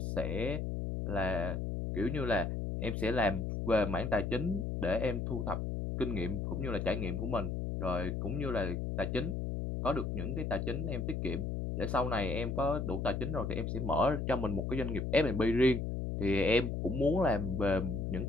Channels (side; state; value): left; noise; hum, 2 dB below the sound